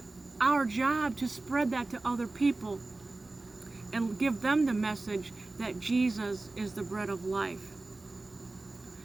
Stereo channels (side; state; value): left; quieter; 3.2 dB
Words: our job to spread that to other people and give them the message that Jesus is the bread of life.